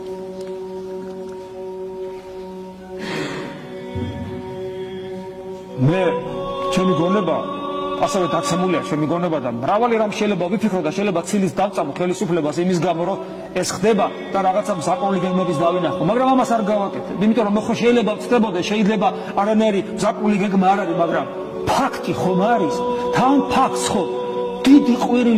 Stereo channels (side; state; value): both; identical; correlation 1.00